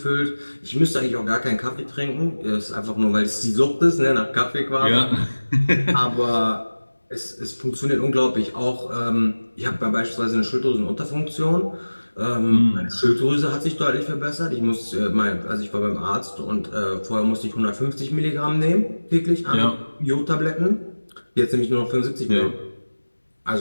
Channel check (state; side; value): inverted; both; correlation -1.00